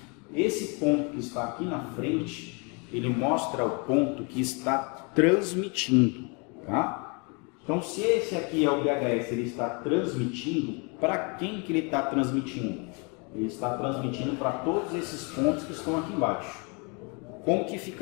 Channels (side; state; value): right; quieter; 32.8 dB